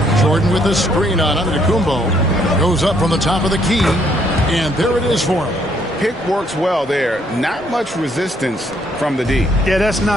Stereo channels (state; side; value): normal; both; correlation 0.69